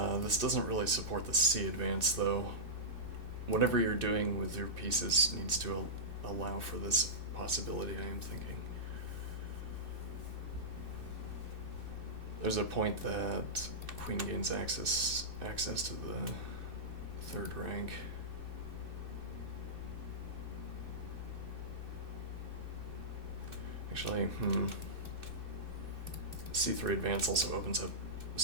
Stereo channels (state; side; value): late; left; 2.6 ms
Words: This doesn't really support the c advance, though. Whatever you're doing with your pieces needs to allow for this possibility, I am thinking. There's a point that queen gains access to the third rank. Actually, c3 advance also opens up